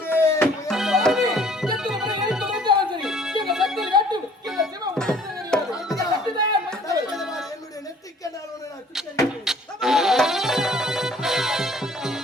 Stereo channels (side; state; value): both; normal; correlation 0.55